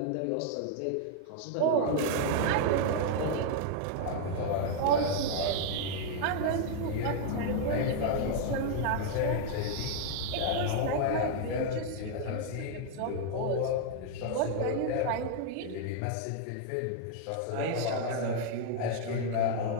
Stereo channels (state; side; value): different; both; correlation 0.00